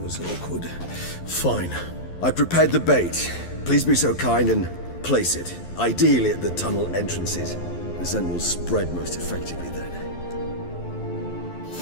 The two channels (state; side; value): late; right; 11 ms